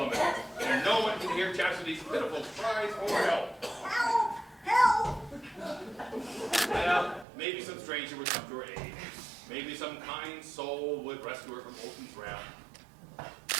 and no one could hear Chastity's pitiful cries for help. Help! Help! Well, maybe some stranger would come to her aid. Maybe some kind soul would rescue her from Olson's wrath.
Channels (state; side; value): drops out; left; at 7.2 s